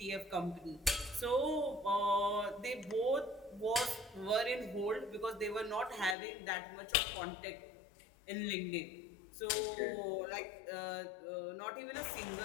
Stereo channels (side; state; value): right; drops out; at 6.2 s